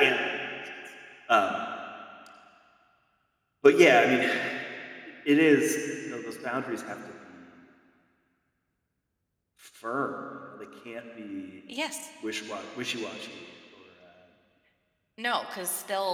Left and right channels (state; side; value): identical; both; correlation 1.00